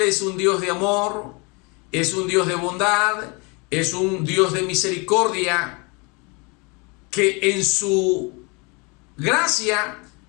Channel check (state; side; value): quieter; right; 30.3 dB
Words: es un Dios de amor, es un Dios de bondad, es un Dios de misericordia, que en su gracia